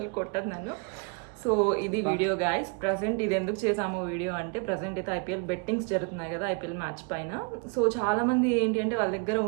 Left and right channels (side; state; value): left; quieter; 35.4 dB